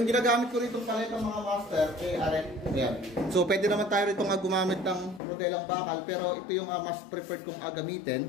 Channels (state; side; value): drops out; right; at 5.2 s